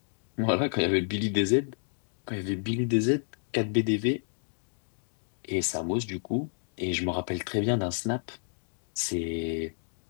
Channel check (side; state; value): right; silent; digital silence